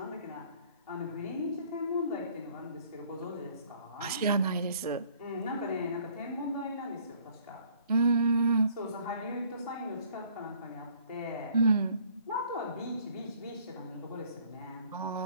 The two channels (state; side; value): inverted; both; correlation -0.59